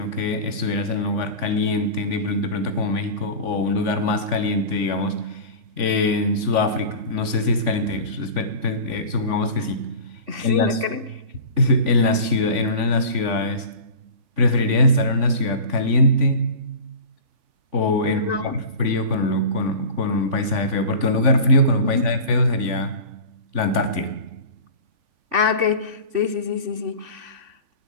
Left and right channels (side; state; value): left; late; 3.5 ms